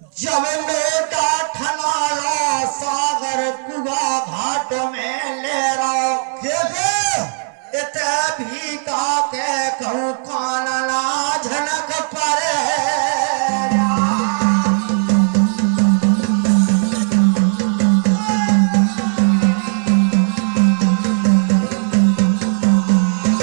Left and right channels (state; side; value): silent; left; 68 dB below the other